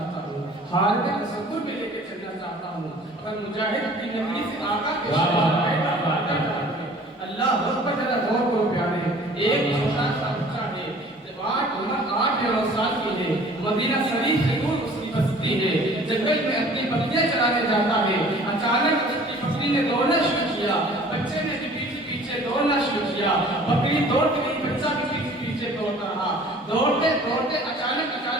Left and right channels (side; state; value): both; normal; correlation 0.50